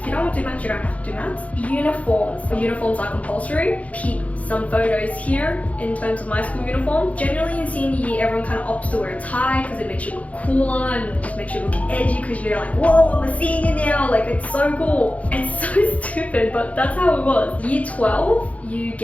you don't want to do maths, you don't have to do maths. Uniforms. Uniforms are compulsory. Keep some photos here in terms of my school uniform. Generally in senior year, everyone kind of opts to wear a tie because it makes you look cooler and just makes you look edgy because you're like, whoa, I'm a senior now. Like, it's so cool. It's so stupid, but that's how it was. Year 12, you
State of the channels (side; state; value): right; late; 0.067 ms